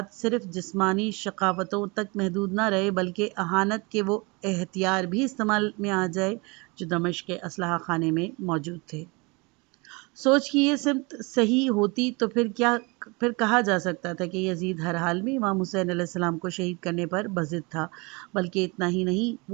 صرف جسمانی شقاوتوں تک محدود نہ رہے بلکہ اہانت کے وہ ہتھیار بھی استعمال میں آ جائے جو دمشق کے اسلحہ خانے میں موجود تھے۔ سوچ کی یہ سمت صحیح ہوتی تو پھر کہا جا سکتا تھا کہ یزید ہر حال میں امام حسین علیہ السلام کو شہید کرنے پر بضد تھا، بلکہ اتنا ہی نہیں،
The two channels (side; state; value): left; quieter; 27.9 dB